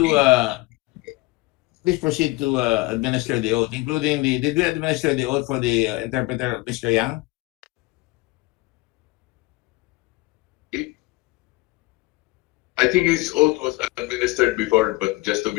Please proceed to administer the oath, including did we administer the oath for the interpreter, Mr. Yang? I think his oath was administered before, but just to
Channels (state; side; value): quieter; right; 22.2 dB